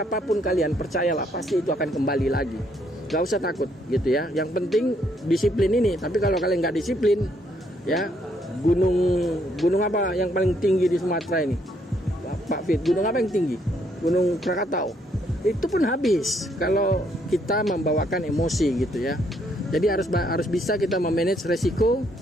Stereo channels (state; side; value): normal; both; correlation 0.71